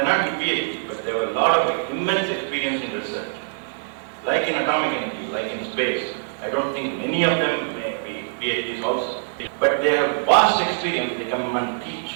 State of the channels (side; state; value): left; silent; 58 dB below the other